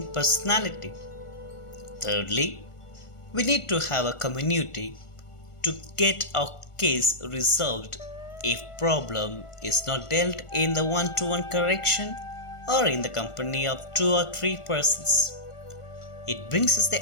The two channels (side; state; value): right; late; 1.4 ms